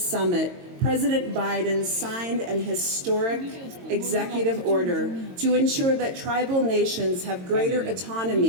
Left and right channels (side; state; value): left; late; 22 ms